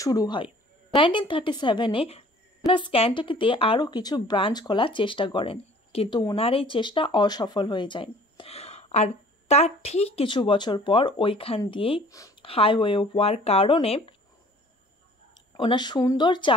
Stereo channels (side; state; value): both; normal; correlation 0.52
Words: হয়। 1937-এ ক্যান্টাকিতে আরও কিছু ব্রাঞ্চ খোলার চেষ্টা করেন, কিন্তু ওনার এই চেষ্টা অসফল হয়ে যায়। আর তার ঠিক কিছু বছর পর ওইখান দিয়েই হাইওয়ে হওয়ার কারণে ওনার সুন্দর